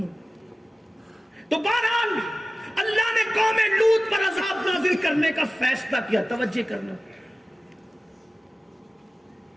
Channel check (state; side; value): normal; both; correlation 0.96